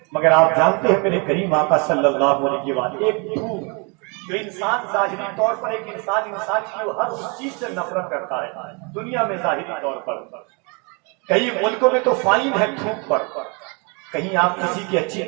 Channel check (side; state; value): left; quieter; 32.9 dB